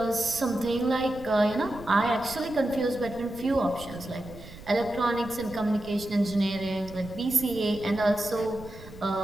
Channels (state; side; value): noise; right; rumble, 16 dB below the sound